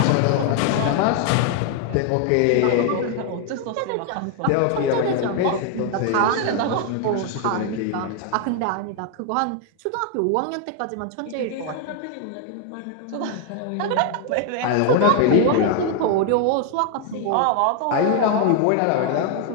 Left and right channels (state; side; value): different; both; correlation 0.00